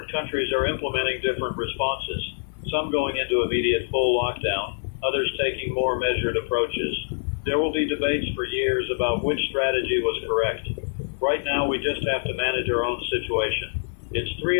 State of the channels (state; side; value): silent; right; 62 dB below the other